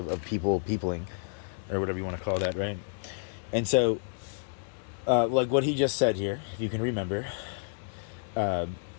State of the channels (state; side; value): silent; right; digital silence